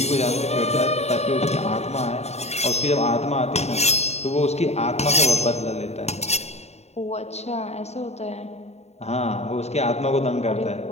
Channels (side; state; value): right; late; 0.31 ms